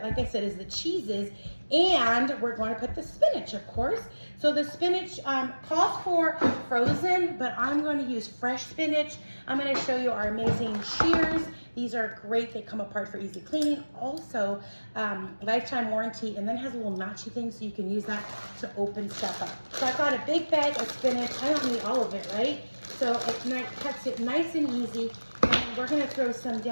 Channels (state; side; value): inverted; both; correlation -1.00